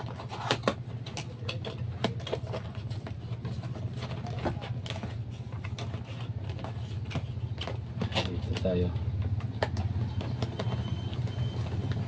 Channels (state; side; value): identical; both; correlation 1.00